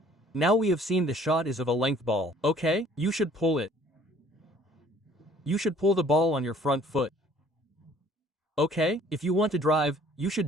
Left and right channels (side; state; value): both; normal; correlation 0.56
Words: Now we have seen the shot is of a length ball, okay? You should pull it. You should pull the ball on your front foot. Okay? If you want to drive, you should